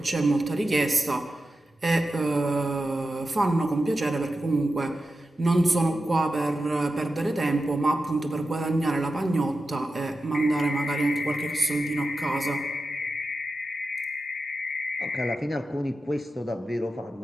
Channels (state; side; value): normal; both; correlation 0.92